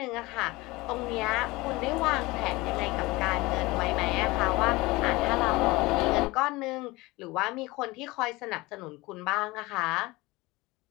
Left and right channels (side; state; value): right; quieter; 21.6 dB